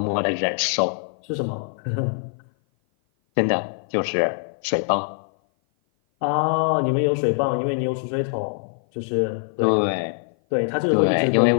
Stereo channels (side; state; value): right; silent; 56 dB below the other